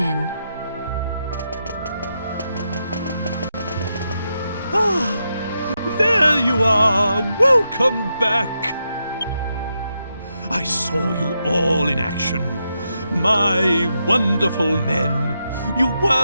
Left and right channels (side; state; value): both; inverted; correlation -0.84